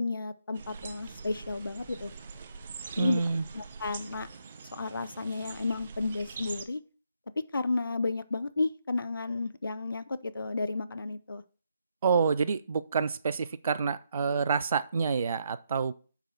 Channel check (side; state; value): both; inverted; correlation -0.78